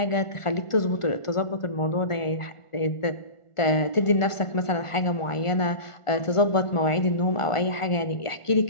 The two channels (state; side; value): late; right; 1.4 ms